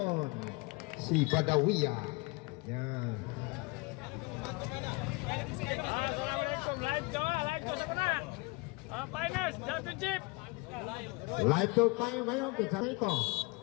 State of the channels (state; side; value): quieter; right; 26.3 dB